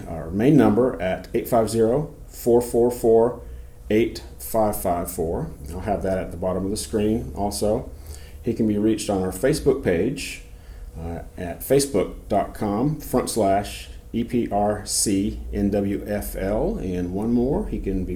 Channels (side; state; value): both; identical; correlation 1.00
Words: our main number at 850-444-8554. I'll have that at the bottom of the screen also. He can be reached on our Facebook page at facebook.com/EPRCNWFL. And one more, he can